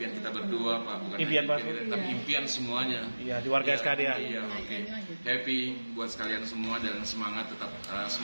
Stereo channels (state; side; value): inverted; both; correlation -1.00